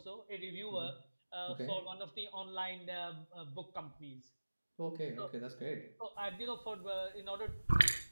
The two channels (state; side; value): inverted; both; correlation -1.00